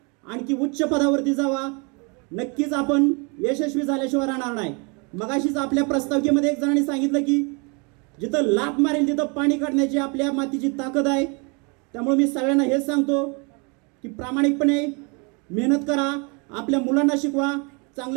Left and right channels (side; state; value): left; quieter; 32.6 dB